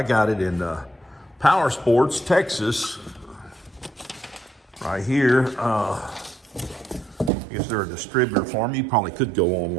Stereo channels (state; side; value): drops out; left; at 7.3 s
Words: got it in Power Sports, Texas. Right here. I guess they're a distributor for me. You probably could go